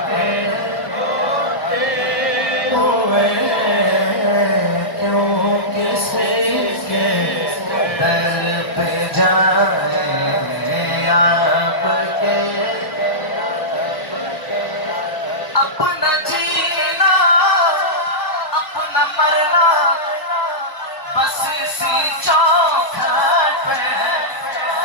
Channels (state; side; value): late; right; 1.2 ms